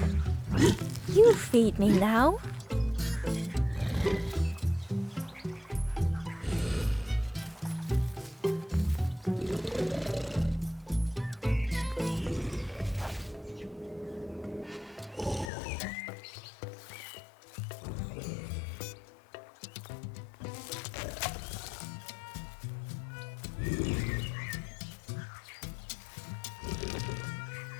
You feed me now.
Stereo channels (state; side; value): drops out; right; at 15.5 s